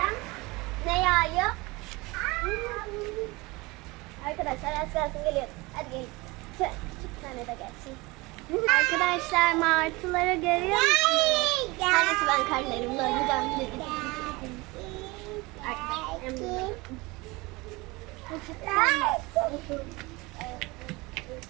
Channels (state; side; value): quieter; left; 23.5 dB